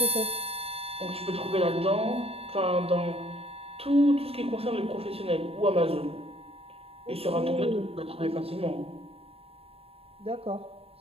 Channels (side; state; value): left; late; 0.28 ms